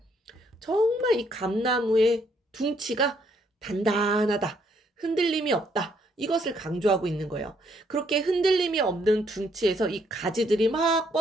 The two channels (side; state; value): both; normal; correlation 0.70